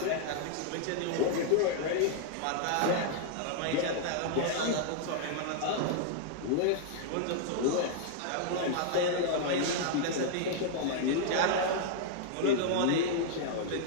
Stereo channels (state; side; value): different; both; correlation -0.01